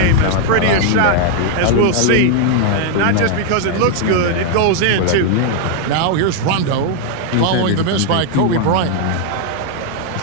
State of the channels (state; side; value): different; both; correlation 0.00